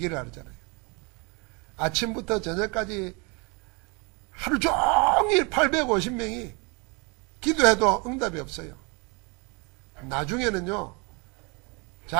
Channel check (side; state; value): left; quieter; 30.5 dB